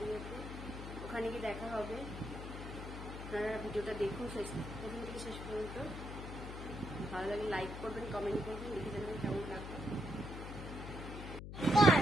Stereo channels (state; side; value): noise; left; hum, 8 dB below the sound